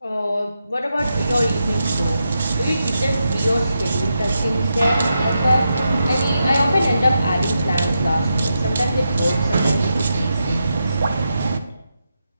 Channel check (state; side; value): inverted; both; correlation -0.85